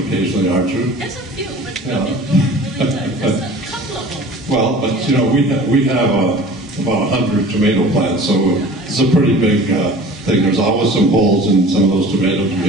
aren't you? There's a few, but Yeah. there's a couple of them. Well, but you know, we have about 100 tomato plants, so it's a pretty big thing. There's always some holes in some of those tomatoes. We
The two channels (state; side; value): normal; both; correlation 0.43